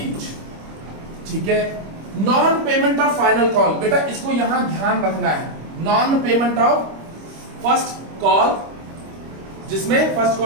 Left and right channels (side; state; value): left; late; 25 ms